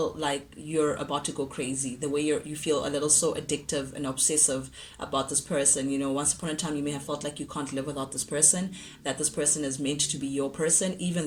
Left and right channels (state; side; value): identical; both; correlation 1.00